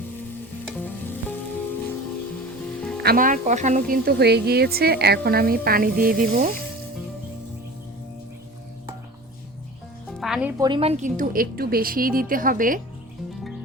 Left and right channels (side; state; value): both; normal; correlation 0.37